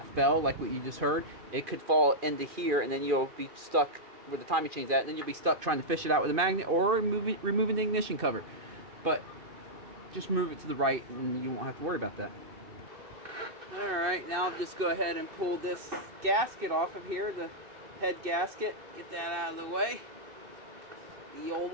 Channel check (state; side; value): late; left; 2.6 ms